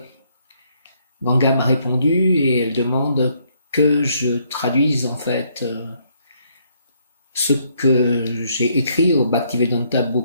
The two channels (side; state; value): both; inverted; correlation -0.70